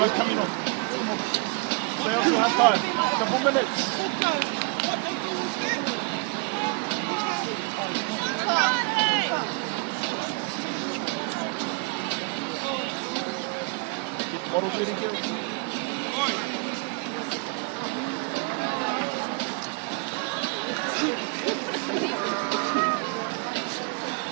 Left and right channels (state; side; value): quieter; left; 31.2 dB